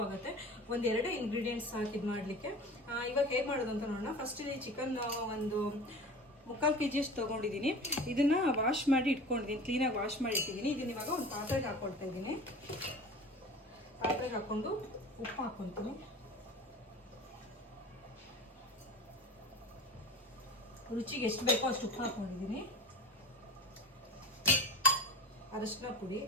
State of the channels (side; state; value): both; normal; correlation 0.36